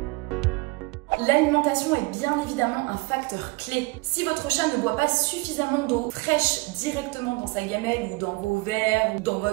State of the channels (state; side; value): quieter; left; 24.4 dB